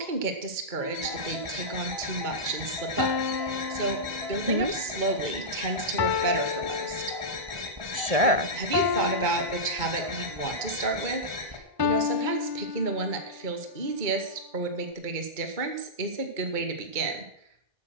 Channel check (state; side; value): late; left; 2.2 ms